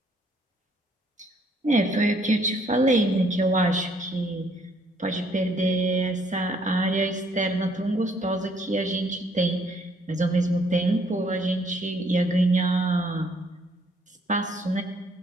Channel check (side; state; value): both; normal; correlation 0.65